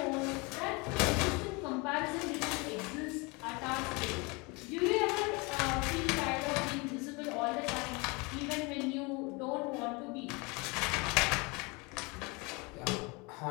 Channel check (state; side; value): quieter; right; 27.9 dB